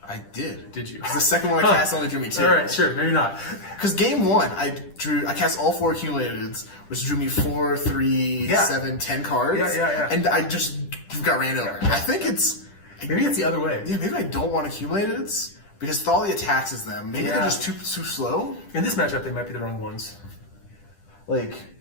I did. Did you? 'Cause the second one I cast only drew me 2. All right, sure, maybe not. Because game 1, I cast all 4 accumulateds, which drew me 4, 3, Yeah. 7, 10 cards. Yeah. And I just got ran over. I think it's Maybe it's the other way. yeah. Maybe I don't want accumulateds because Thalia taxes them. Maybe Yeah. they're just too slow. In this matchup, they might be the wrong ones. Like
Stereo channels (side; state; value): right; late; 10 ms